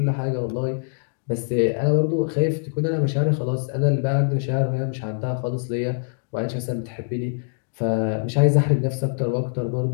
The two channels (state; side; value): silent; right; digital silence